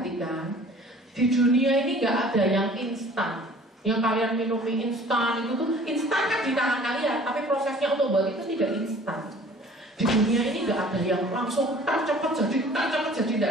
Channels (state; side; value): normal; both; correlation 0.50